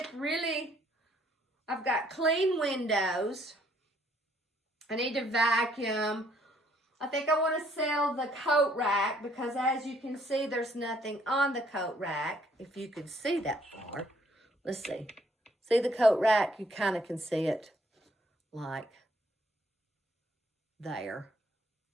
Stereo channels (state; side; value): normal; both; correlation 0.66